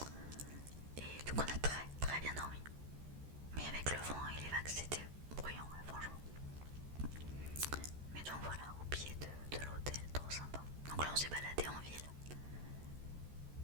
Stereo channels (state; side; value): late; left; 14 ms